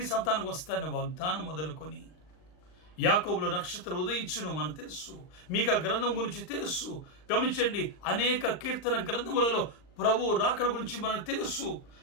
సంతానికి వస్తానని వాగ్దానం మొదలుకొని, యాకోబులో నక్షత్రం ఉదయించును మనకు తెలుసు. మీకు ఆ గ్రంథం గురించి తెలుసు. గమనించండి, అనేక కీర్తన గ్రంథములలో ప్రభు రాకడ గురించి మనకు తెలుసు.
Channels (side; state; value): right; late; 39 ms